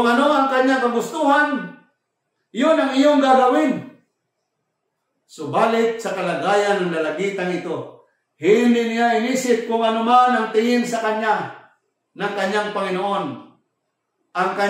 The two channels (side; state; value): both; identical; correlation 1.00